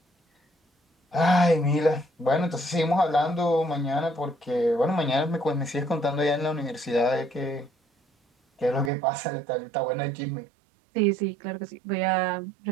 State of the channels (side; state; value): left; drops out; at 8.9 s